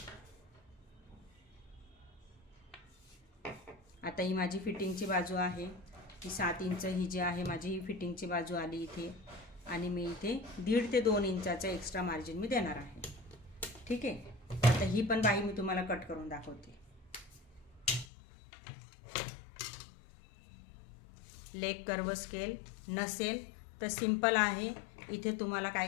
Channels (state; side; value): drops out; right; at 18.1 s